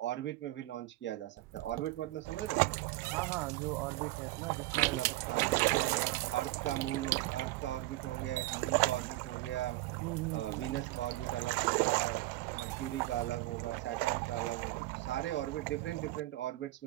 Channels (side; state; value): left; quieter; 17.9 dB